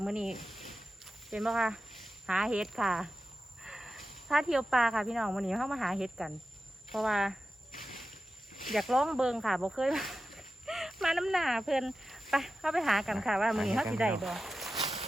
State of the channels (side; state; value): both; normal; correlation 0.92